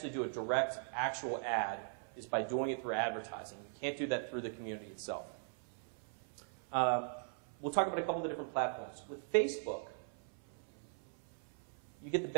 do a direct, actual ad is by doing it through advertising. You can't do that through the community itself. We'll talk about a couple of different platforms. With Facebook, you get the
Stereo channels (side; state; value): left; silent; 51 dB below the other